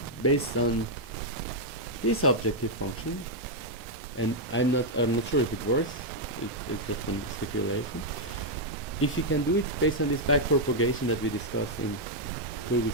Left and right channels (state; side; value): normal; both; correlation -0.03